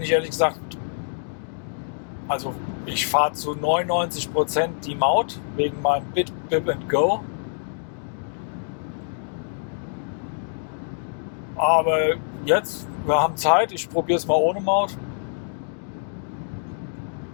ich ehrlich gesagt, also ich fahre zu 99% die Maut wegen meinem Bip and Go. Aber jetzt, wir haben Zeit, ich probiere es mal ohne Maut.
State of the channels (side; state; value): right; silent; digital silence